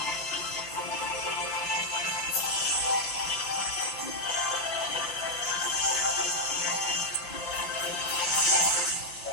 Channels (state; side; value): late; right; 5.8 ms